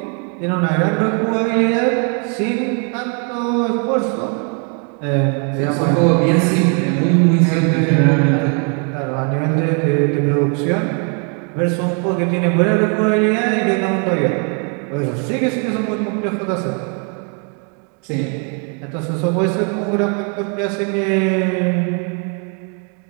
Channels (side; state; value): left; quieter; 38.4 dB